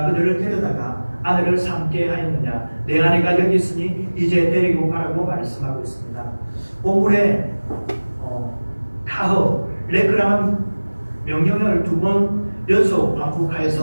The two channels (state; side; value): inverted; both; correlation -1.00